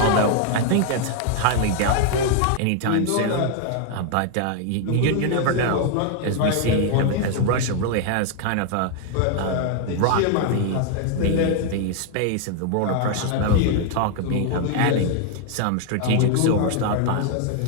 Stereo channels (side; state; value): both; different; correlation 0.00